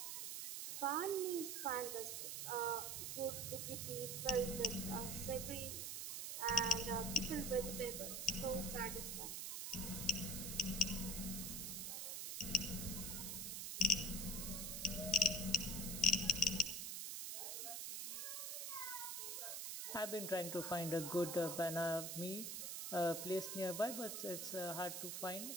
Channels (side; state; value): right; noise; hiss, 4 dB below the sound